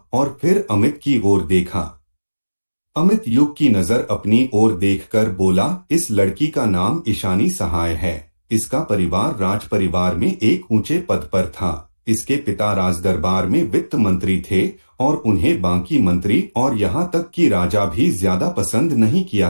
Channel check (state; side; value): inverted; both; correlation -1.00